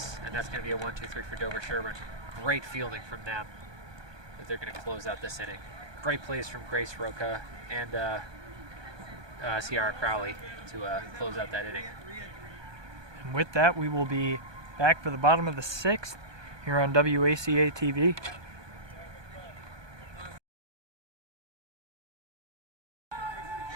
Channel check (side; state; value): left; late; 1.2 ms